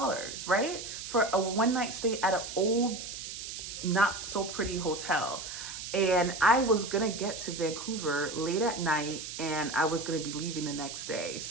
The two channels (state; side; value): noise; right; hiss, 8 dB below the sound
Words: right, for a 1-night stay at an old, not so pretty hotel. And I was gonna get to Vancouver late at night, and I was gonna be leaving the next day.